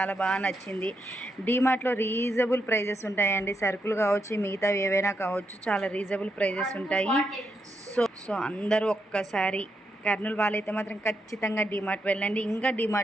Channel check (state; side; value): normal; both; correlation 0.82